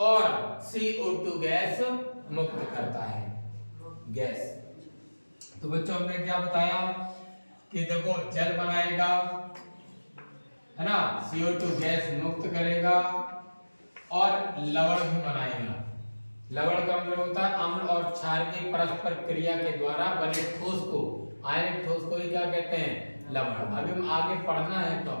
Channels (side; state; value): both; inverted; correlation -1.00